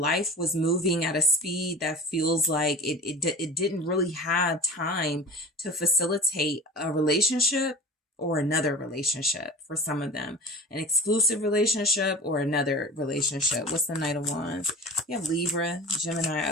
was moving at a speed that feels like it didn't really have time to facilitate a relationship or another relationship. For some of them, an exclusive relationship or another relationship. What's the Knight of Wands? You have Libra, Gemini,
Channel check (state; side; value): normal; both; correlation 0.37